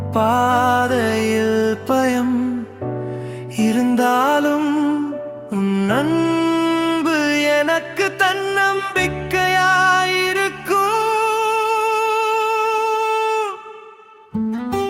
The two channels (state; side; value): identical; both; correlation 1.00